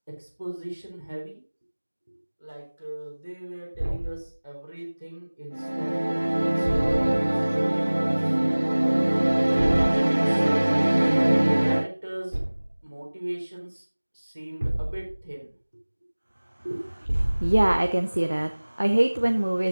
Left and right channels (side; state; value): both; inverted; correlation -1.00